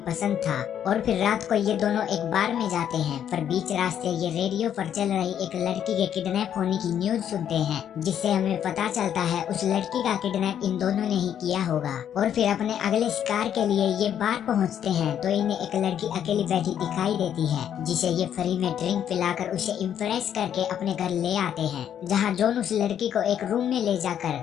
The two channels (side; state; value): right; quieter; 9.5 dB